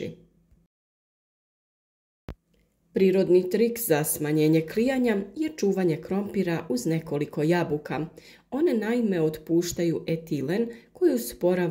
Prirodni trik za smanjenje klijanja je čuvanje krompira uz nekoliko jabuka. One naime otpuštaju etilen koji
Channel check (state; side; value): identical; both; correlation 1.00